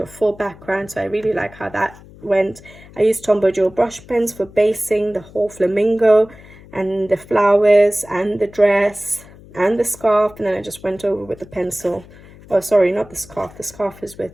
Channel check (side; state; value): left; noise; hum, 21 dB below the sound